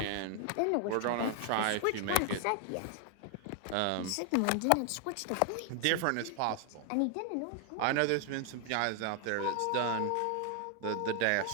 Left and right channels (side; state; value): both; different; correlation 0.00